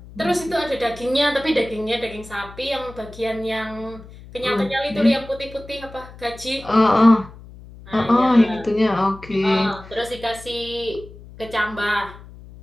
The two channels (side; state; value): left; noise; hum, 18 dB below the sound